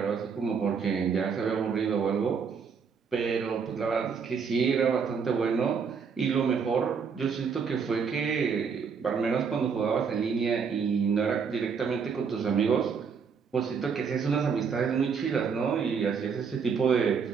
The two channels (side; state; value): left; quieter; 6.1 dB